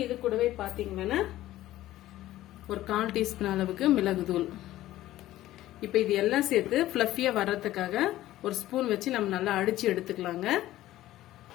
இது கூடவே பாத்தீங்கன்னா ஒரு 1/4 டீஸ்பூன் அளவுக்கு மிளகு தூள். இப்போ இது எல்லாம் சேர்த்து ஃபிளஃபியா வர்றதுக்காக ஒரு ஸ்பூன் வச்சு நம்ம நல்லா அடிச்சு எடுத்துக்கலாங்க.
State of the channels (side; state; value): right; quieter; 14.9 dB